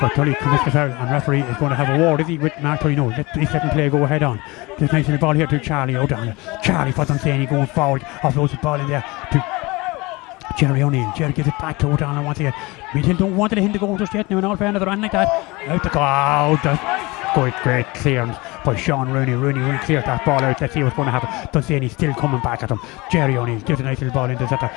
Tully commits the foul, and referee is going to have a word, is he, with Mark Tully? No, he's letting play go ahead on. This nice little ball here to Charlie O'Donnell. Charlie for Dunsany going forward. Offloads the ball in there to Jerry O'Neill. Jerry gives it back to O'Donnell once again. Meath Hill don't want to hit the goal just yet now, in all fairness, they're on like that. Out the goal. Great clearance by Sean Rooney. Rooney cleared that ball out. Let's see what's going to happen. Dunsany still coming back at him. Jerry O'Neill gives a nice little ball into that,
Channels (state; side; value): quieter; right; 23.5 dB